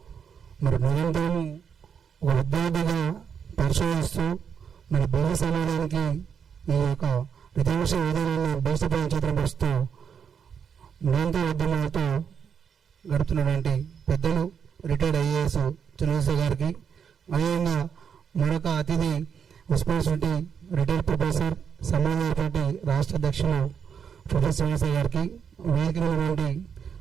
మరి నిరంతరం ఒక విద్యార్థిగా పరిశోధిస్తూ మరి బీసీ సమాజానికి ఈ యొక్క రిజర్వేషన్ విధానాన్ని బీసీ చేతులు పరుస్తూ నిరంతర ఉద్యమాలతో గడుపుతున్నటువంటి పెద్దలు రిటైర్డ్ ఐఏఎస్ చంద్రశేఖర్ గారికి, అదేవిధంగా మరొక అతిథి ఉస్మాన్ రిటైర్డ్ ప్రొఫెసర్ సమాజ పార్టీ రాష్ట్ర అధ్యక్షులు ప్రొఫెసర్ శ్రీనివాస గారికి, వేదిక ఉన్నటువంటి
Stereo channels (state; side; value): quieter; left; 7.2 dB